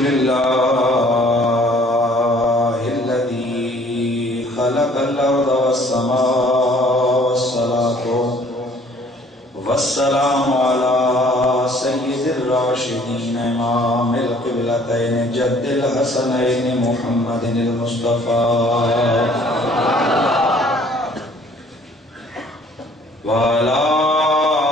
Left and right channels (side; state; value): both; normal; correlation 0.57